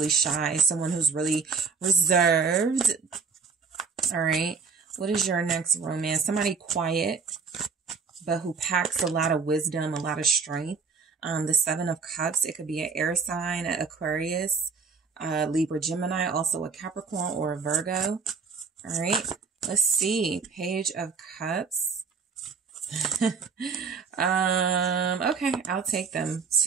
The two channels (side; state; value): left; quieter; 5.2 dB